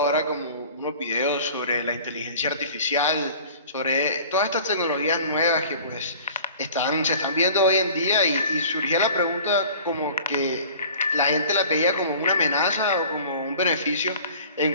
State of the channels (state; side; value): inverted; both; correlation -0.45